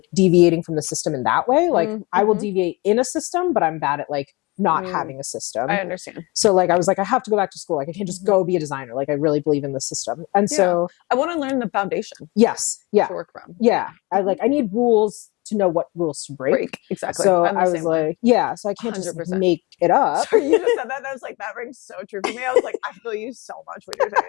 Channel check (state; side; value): quieter; right; 24.8 dB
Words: deviating from the system in that way. Like I will deviate in a system, but I'm bad at like not having a system. I understand. So like, I was like, I have to go back to school. Like I can't just go be a designer. Like I really believe in the system. And so I want to learn the foundation. Yes. Yeah. To work from. Yeah. I need rules to know what rules to break. Exactly. So I was like, so I can't 100%. Just like, make it up. So you just said that. I was like, that rings so true for me. I was like, I feel you so much when you're